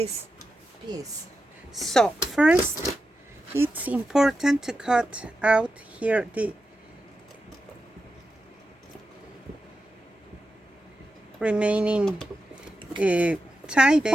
piece. So first it's important to cut out here the remaining tie back.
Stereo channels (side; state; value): both; normal; correlation 0.89